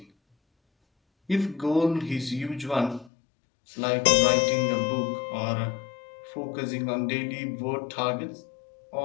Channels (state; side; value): drops out; right; at 3.1 s